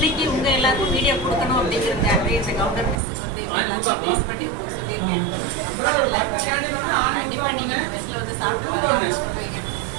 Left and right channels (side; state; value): left; drops out; at 3.0 s